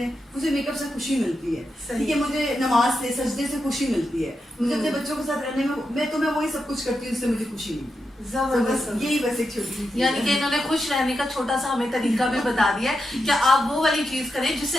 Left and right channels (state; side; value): normal; both; correlation 0.87